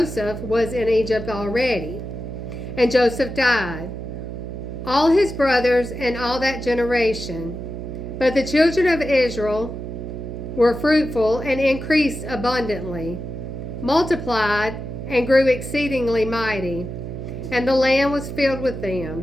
was in Egypt already, and Joseph died, all his brothers and all that generation. But the children of Israel were fruitful and increased abundantly, multiplied and grew exceedingly mighty, and the land was filled with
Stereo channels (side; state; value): right; noise; hum, 7 dB below the sound